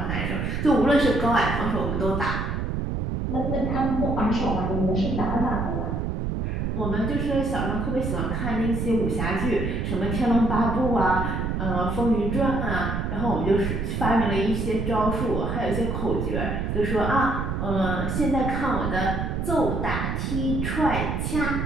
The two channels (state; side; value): noise; right; rumble, 1 dB below the sound